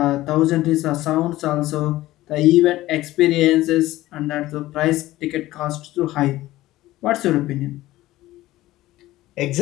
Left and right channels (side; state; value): right; quieter; 16.5 dB